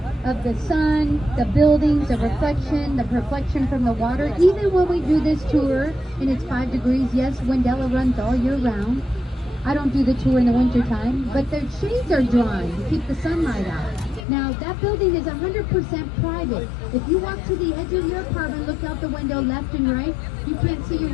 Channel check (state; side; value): drops out; right; at 14.2 s